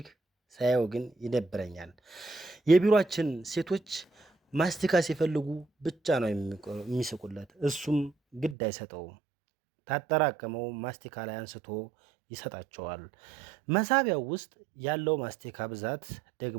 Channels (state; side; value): drops out; left; at 8.6 s